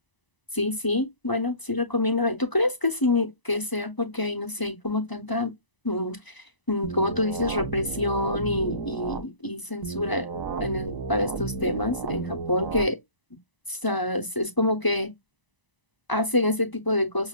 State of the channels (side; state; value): right; late; 1.0 ms